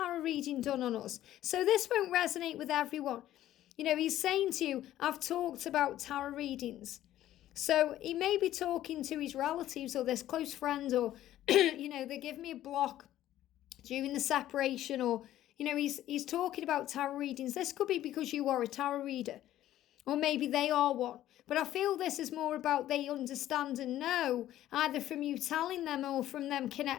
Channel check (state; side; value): quieter; right; 13.2 dB